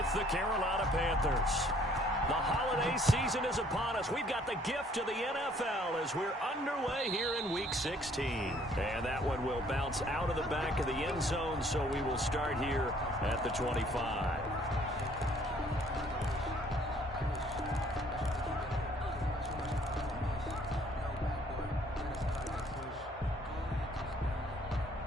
the Carolina Panthers. The holiday season is upon us. We've got the gift of the NFL as we're underway here in Week 16. And that one will bounce out of the back of the end zone, so we will start here at the 25.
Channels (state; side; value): normal; both; correlation 0.61